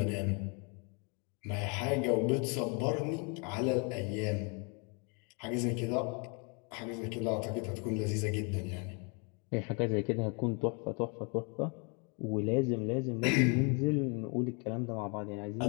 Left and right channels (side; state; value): right; quieter; 34.6 dB